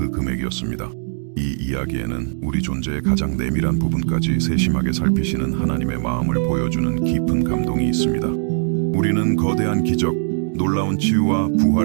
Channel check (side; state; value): left; silent; digital silence